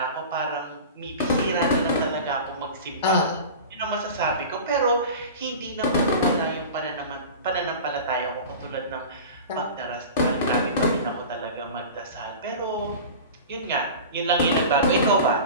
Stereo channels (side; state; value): both; inverted; correlation -0.34